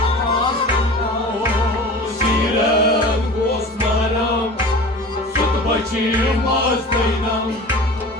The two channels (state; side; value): normal; both; correlation 0.38